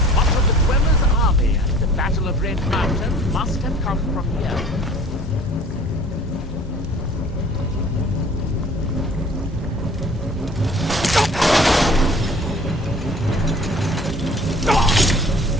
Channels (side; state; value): both; normal; correlation 0.49